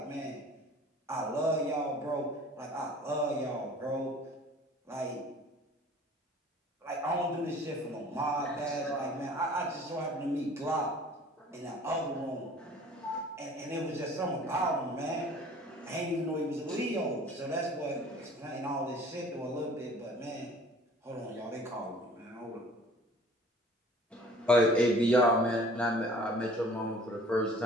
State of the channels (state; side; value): normal; both; correlation 0.49